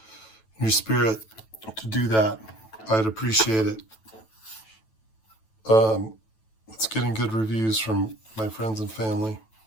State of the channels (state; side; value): late; right; 9.1 ms